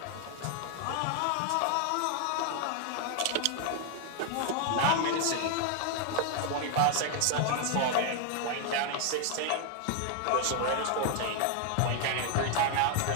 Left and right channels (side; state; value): both; different; correlation 0.00